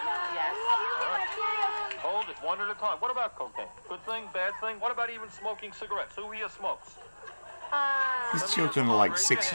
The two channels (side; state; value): both; inverted; correlation -1.00